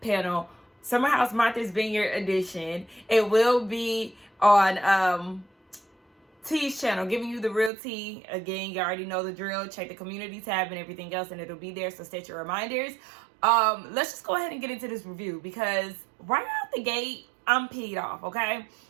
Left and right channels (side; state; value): left; drops out; at 7.7 s